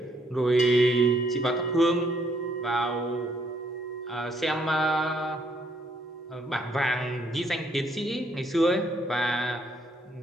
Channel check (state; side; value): normal; both; correlation 0.70